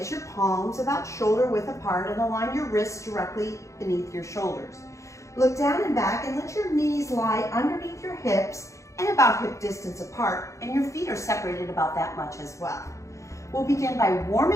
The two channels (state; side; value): late; right; 0.15 ms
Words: your palms about shoulder width apart and align your wrists directly beneath your shoulders. Look down and back and let your knees lie underneath your hips and about hip distance apart, and your feet are separated about that much as well. We'll begin by